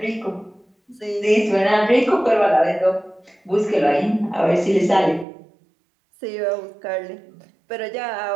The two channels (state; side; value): drops out; left; at 5.2 s